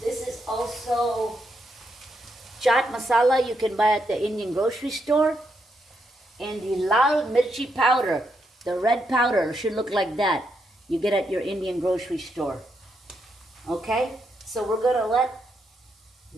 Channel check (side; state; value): both; normal; correlation 0.80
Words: This is also chaat masala you can buy at the Indian grocery store. And the lal mirchi powder, the red powder, should look like that. You get at your Indian grocery store. Okay, so we're gonna let